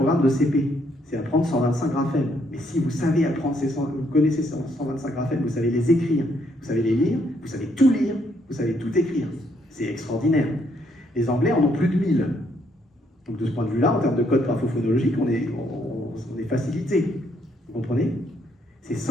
de CP. C'est apprendre 125 graphèmes. Mais si vous savez apprendre vous connaissez 125 graphèmes, vous savez les écrire, vous savez les lire, vous savez tout lire, vous savez tout écrire. C'est extraordinaire. Les Anglais en ont plus de 1000. Donc de ce point de vue-là, en termes de code graphophonologique, on est facilité. Vous comprenez? C'est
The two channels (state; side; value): normal; both; correlation 0.71